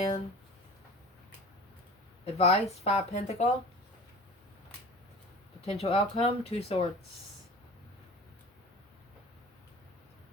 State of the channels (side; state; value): both; normal; correlation 0.40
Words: Advice, Five Pentacle. Potential outcome, Two Swords.